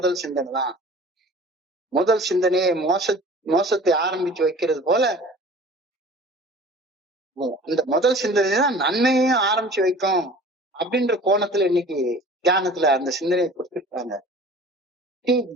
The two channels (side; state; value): both; normal; correlation 0.44